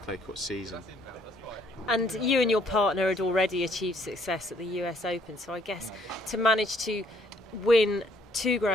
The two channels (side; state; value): both; normal; correlation 0.65